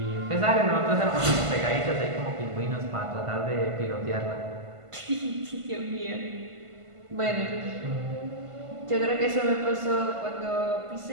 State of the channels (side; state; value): left; late; 1.5 ms